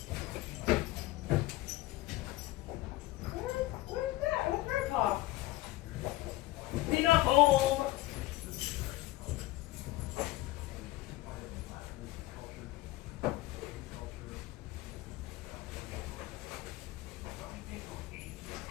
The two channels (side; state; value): right; quieter; 17.6 dB